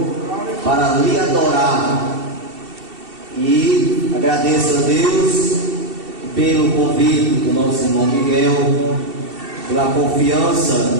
para lhe adorar. E agradeço a Deus pelo convite do nosso irmão Miguel, pela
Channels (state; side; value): late; left; 2.7 ms